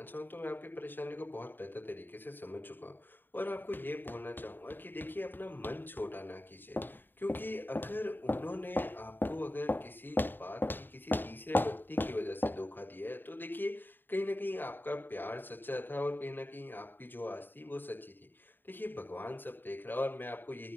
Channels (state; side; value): late; right; 0.093 ms